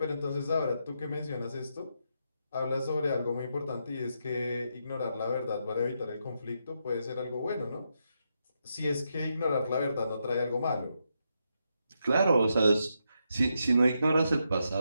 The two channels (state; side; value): inverted; both; correlation -0.82